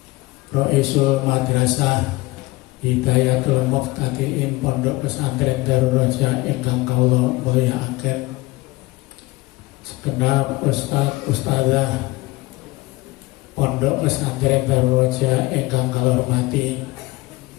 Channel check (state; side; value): quieter; right; 21.0 dB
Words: Roisul Madrasah Hidayatul Muqtadiin Pondok Pesantren Darul Raja ingkang kula mulyakaken, segenap ustaz-ustadzah Pondok Pesantren Darul Raja ingkang kula hormati,